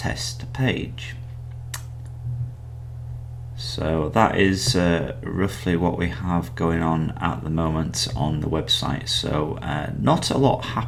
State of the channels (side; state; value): both; identical; correlation 1.00